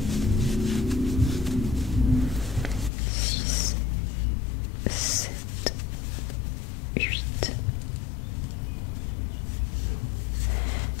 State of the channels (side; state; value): right; drops out; at 2.9 s